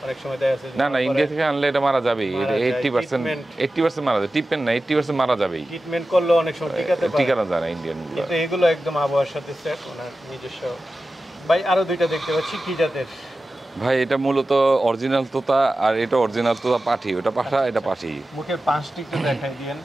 অনেক সময় দেখা যাচ্ছে না না, ইন্ডিয়া থেকে আনলে এটা মারা যাবেই। মারা এটা যায়, 80% treatment। 80% মারা যায়। টিপেন না, 80% মারা যাবেই। ট্রিটমেন্ট করলে অনেক সময় টিকাতে পারে, ঠিকানা যায় না ইন্ডিয়ান গুলো। কিন্তু এগুলো একদম আবহাওয়ার সাথে সেট, ওনার নিজস্ব। ভাই আরো দুইটা দেখতে পাচ্ছি, কি জাতের? ভাই এটা মূলত অরিজিনাল তোতা, আর এটা অরিজিনাল তোতা পাঠি। ওটা পাঠা, এটা পাঠি। মুখের পাঁচটি একটু দেখাই দিয়েন।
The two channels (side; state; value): both; normal; correlation 0.94